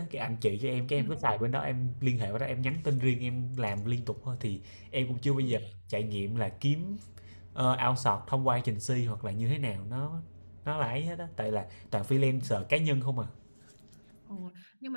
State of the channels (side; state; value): both; inverted; correlation -1.00